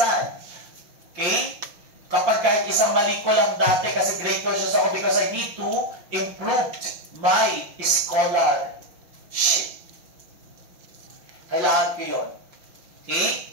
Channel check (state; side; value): late; left; 5.9 ms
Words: Okay? Kapag kahit isang mali ko lang dati, kasi grade conscious ako because I need to improve my scholarship. Kailangan ko yun. Okay?